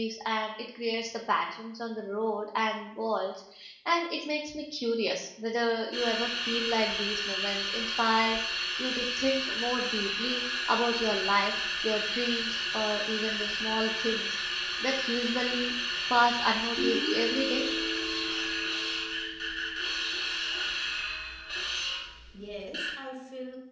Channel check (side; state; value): both; identical; correlation 1.00